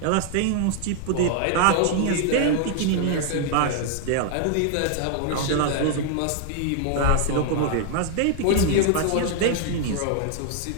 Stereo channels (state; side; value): different; both; correlation 0.00